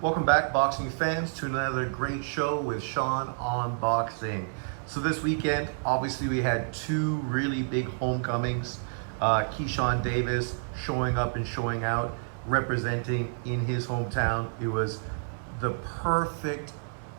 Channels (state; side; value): silent; left; 59 dB below the other